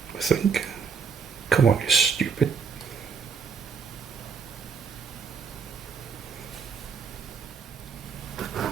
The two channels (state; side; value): quieter; left; 5.8 dB